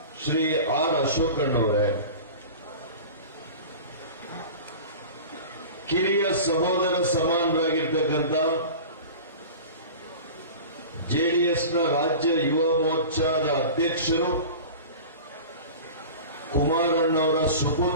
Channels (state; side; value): inverted; both; correlation -0.36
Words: ಶ್ರೀ ಆರ್ ಅಶೋಕಣ್ಣವರೇ, ಕಿರಿಯ ಸಹೋದರ ಸಮಾನರಾಗಿರ್ತಕ್ಕಂಥ ಜೆಡಿಎಸ್ನ ರಾಜ್ಯ ಯುವ ಮೋರ್ಚಾದ ಅಧ್ಯಕ್ಷರು, ಕುಮಾರಣ್ಣವರ